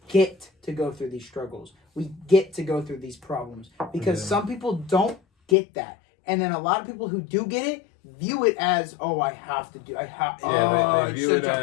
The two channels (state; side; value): drops out; right; at 5.6 s